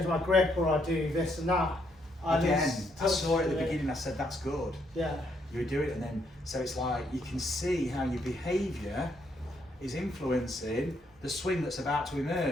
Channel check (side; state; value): both; normal; correlation 0.73